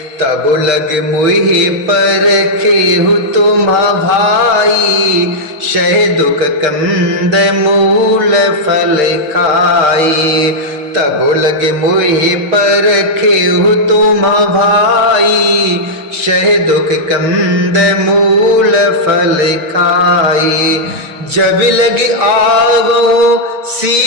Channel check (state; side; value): late; left; 6.6 ms